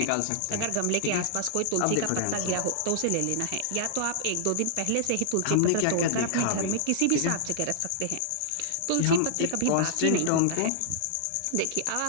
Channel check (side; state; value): both; different; correlation -0.01